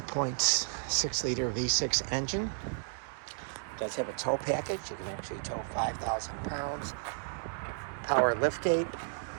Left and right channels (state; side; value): silent; left; digital silence